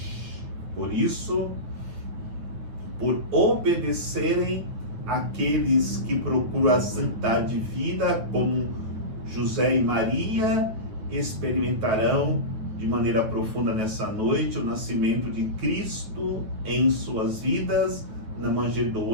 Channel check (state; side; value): late; left; 9.3 ms